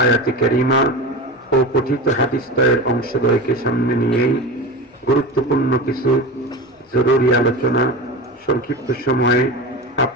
আয়াতে কারিমা ও পঠিত হাদিসদ্বয়ের অংশদ্বয়কে সামনে নিয়েই গুরুত্বপূর্ণ কিছু জরুরি আলোচনা সংক্ষিপ্ত সময়ে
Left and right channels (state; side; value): normal; both; correlation 0.27